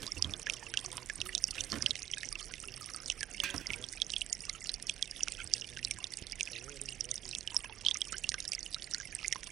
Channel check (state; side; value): quieter; left; 11.7 dB